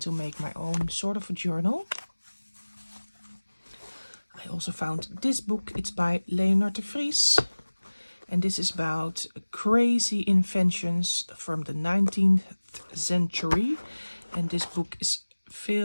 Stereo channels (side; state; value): both; inverted; correlation -1.00